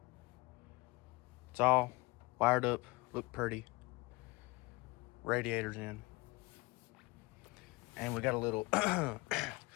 It's all wired up, look pretty. Radiator's in. And we got a little,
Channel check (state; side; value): quieter; right; 24.0 dB